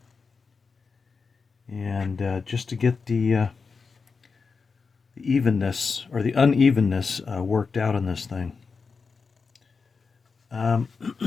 and just to get the evenness or the unevenness worked out in this thing.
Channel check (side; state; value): right; quieter; 4.9 dB